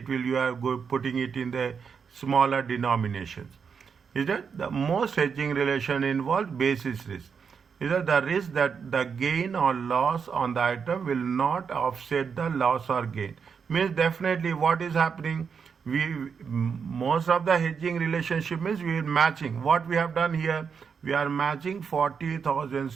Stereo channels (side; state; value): left; quieter; 6.2 dB